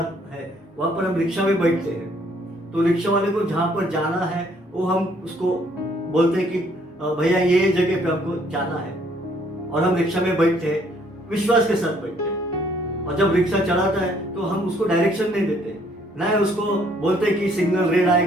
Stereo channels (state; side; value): normal; both; correlation 0.65